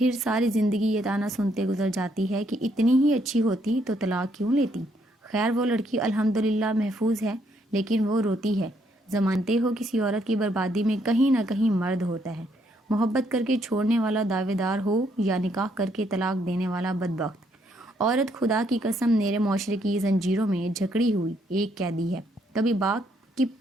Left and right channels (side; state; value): both; normal; correlation 0.72